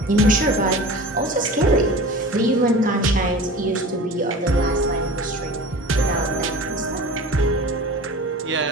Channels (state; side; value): normal; both; correlation 0.37